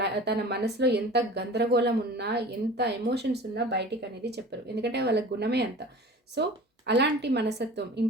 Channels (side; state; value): both; normal; correlation 0.40